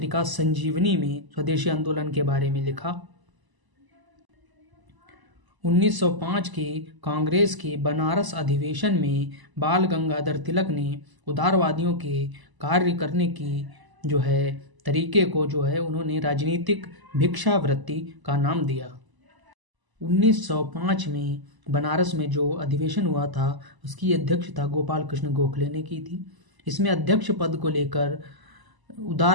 संजीवनी में स्वदेशी आंदोलन के बारे में लिखा। 1905 के कांग्रेस के बनारस अधिवेशन में बाल गंगाधर तिलक ने उदारवादियों के कार्य करने की तरीके को उन्होंने राजनीतिक भिक्षावृत्ति का नाम दिया। 1905 में बनारस में जो अधिवेशन हुआ था उसकी अध्यक्षता गोपाल कृष्ण गोखले ने की थी। इसमें अध्यक्ष पद को लेकर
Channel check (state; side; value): late; left; 1.0 ms